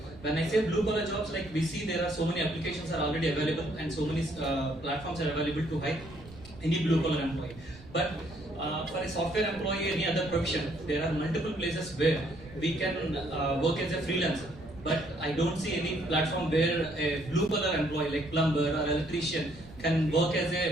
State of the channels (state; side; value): noise; right; rumble, 19 dB below the sound